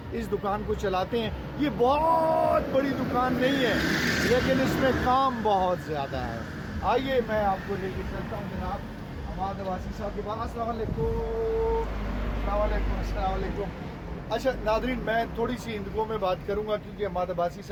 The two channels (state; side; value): identical; both; correlation 1.00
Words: इस दुकान को चलाते हैं। ये बहुत बड़ी दुकान नहीं है, लेकिन इसमें काम बहुत ज़्यादा है। आइए मैं आपको लेके चलता हूँ जनाब अमाद अब्बासी साहब के पास। अस्सलाम वालेकुम। अच्छा नादरीन, मैं थोड़ी सी हिंदुओं में बात करूँगा क्योंकि अमाद अब्बासी